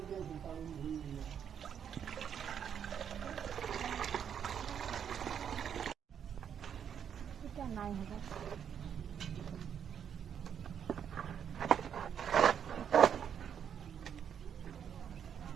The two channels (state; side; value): quieter; left; 8.3 dB